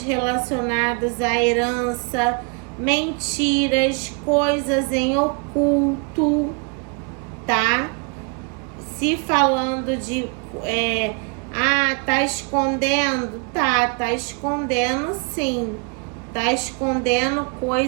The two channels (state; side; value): quieter; left; 35.5 dB